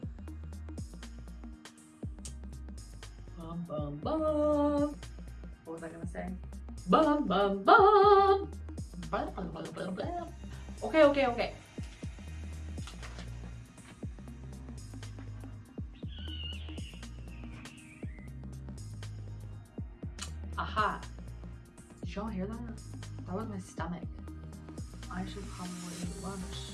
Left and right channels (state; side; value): identical; both; correlation 1.00